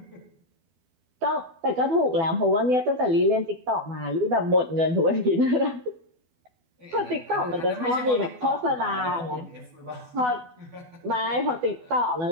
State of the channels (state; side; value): late; left; 12 ms